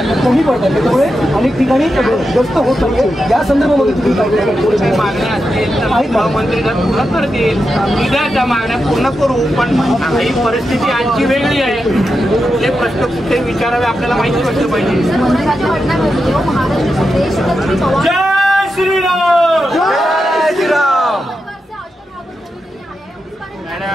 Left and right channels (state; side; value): normal; both; correlation 0.88